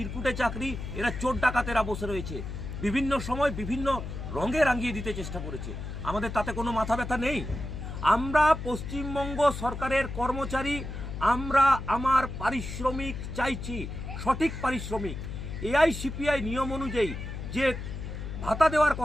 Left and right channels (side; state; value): left; noise; hum, 7 dB below the sound